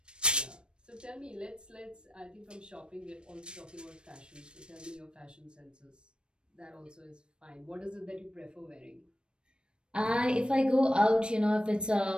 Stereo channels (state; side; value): late; left; 0.054 ms